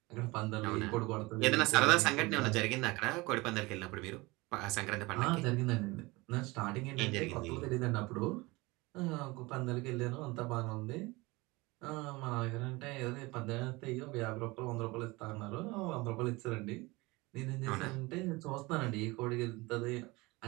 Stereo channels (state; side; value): quieter; left; 23.0 dB